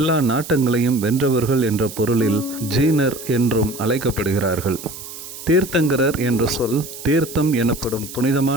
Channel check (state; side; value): noise; right; hiss, 13 dB below the sound